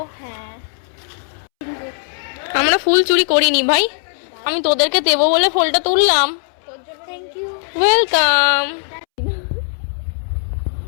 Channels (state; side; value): silent; right; 67 dB below the other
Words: হ্যাঁ, আমরা ফুল চুরি করিনি ভাই, আমি তোদেরকে দেবো বলে ফুলটা তুললাম। তোর জন্য thank you. Welcome,